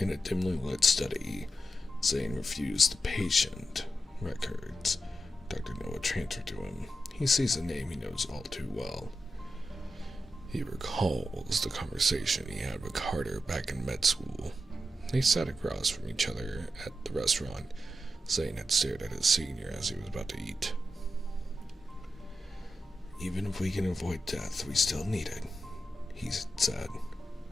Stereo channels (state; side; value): normal; both; correlation 0.89